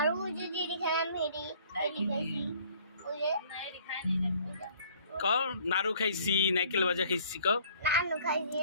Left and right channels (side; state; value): both; inverted; correlation -0.57